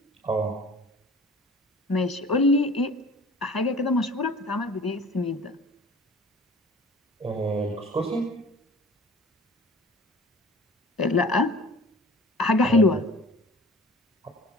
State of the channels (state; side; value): normal; both; correlation 0.44